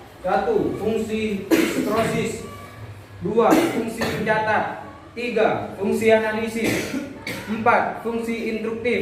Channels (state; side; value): identical; both; correlation 1.00